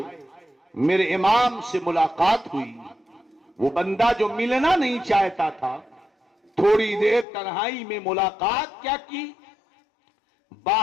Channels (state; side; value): drops out; right; at 7.2 s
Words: میرے امام سے ملاقات ہوئی۔ وہ بندہ جو ملنا نہیں چاہتا تھا، تھوڑی دیر تنہائی میں ملاقات کیا کی،